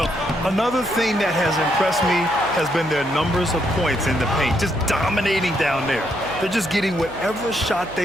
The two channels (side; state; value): left; noise; hum, 20 dB below the sound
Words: another thing that has impressed me has been their numbers of points in the paint, just dominating down there. They're just getting whatever shot